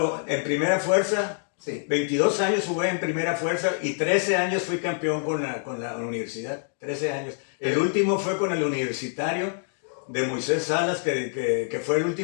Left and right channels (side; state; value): right; silent; digital silence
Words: en primera fuerza, sí. 22 años jugué en primera fuerza y 13 años fui campeón con la universidad. 13 años. El último fue con el universitario de Moisés Salas, que fue el